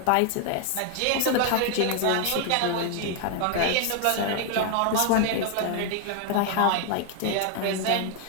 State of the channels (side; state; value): both; different; correlation 0.00